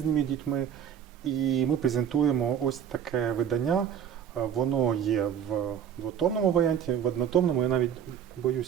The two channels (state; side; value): quieter; left; 9.0 dB